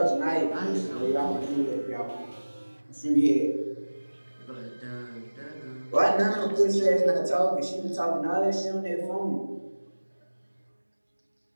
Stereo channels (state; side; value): inverted; both; correlation -1.00